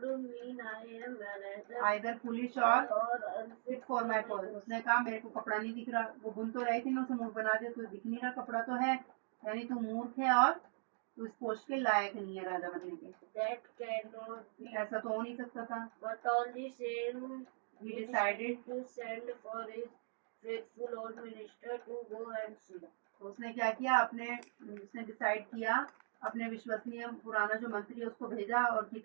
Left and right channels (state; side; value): silent; left; digital silence